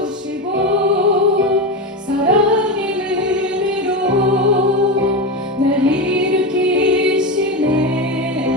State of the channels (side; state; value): both; normal; correlation 0.17